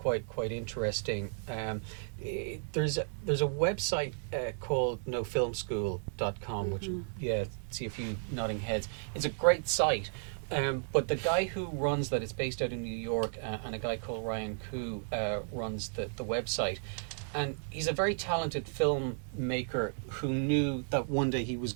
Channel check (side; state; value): left; silent; digital silence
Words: interesting. There's a website called nofilmschool.com, which see a few nodding heads. It's a great site, but the guy who runs that, it's based out in New York, and a guy called Ryan Koo runs the website. And he's a very talented filmmaker who knew that one day he was